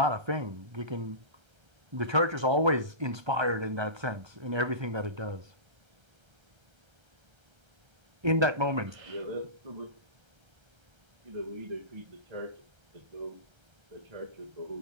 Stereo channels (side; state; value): left; late; 1.3 ms